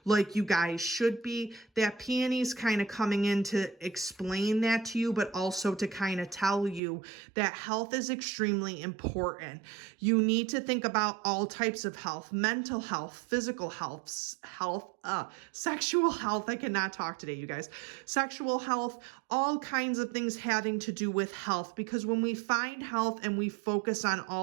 like you guys should be. That peony's kind of coming in to explain that to you, but also to kind of tell you that health is extremely important. You need to think about all types of health: mental health, physical health, sexual health. I cannot talk today, you guys. Sexual health, all kinds of things having to do with health, because when we find health and we focus on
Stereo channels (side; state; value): left; drops out; at 6.8 s